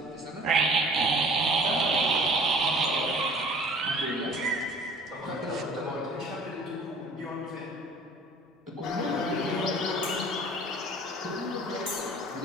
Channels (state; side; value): normal; both; correlation 0.49